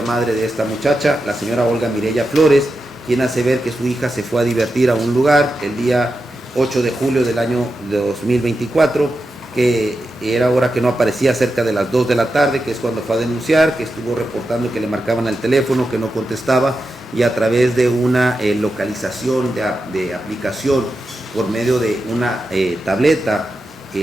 de esta muchacha, la señora Olga Mireya Flores, quien hace ver que su hija se fue a divertir a un lugar el día 8 de julio del año 2024, que era hora que no aparecía, cerca de las 2 de la tarde, que es cuando fue a denunciar, que estuvo reportando que le marcaban al teléfono, que no contestaba, y a través de una localización de aplicación por medio de una tableta,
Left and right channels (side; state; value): both; normal; correlation 0.89